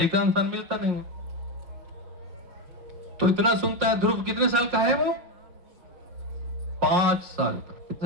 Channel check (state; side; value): late; left; 5.5 ms